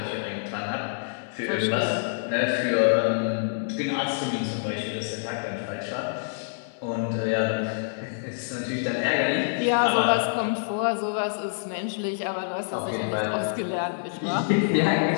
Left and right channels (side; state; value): right; silent; digital silence